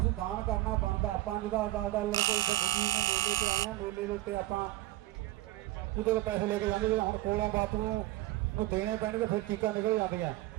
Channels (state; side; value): quieter; left; 16.7 dB